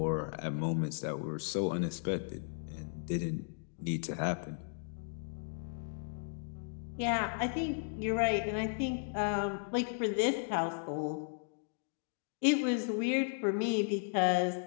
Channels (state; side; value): silent; right; digital silence